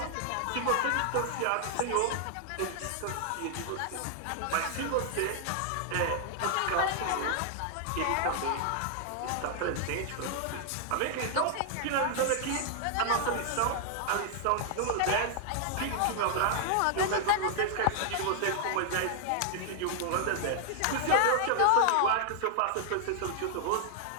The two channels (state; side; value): different; both; correlation 0.00